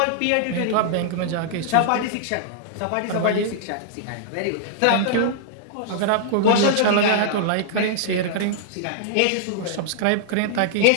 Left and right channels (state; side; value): different; both; correlation -0.01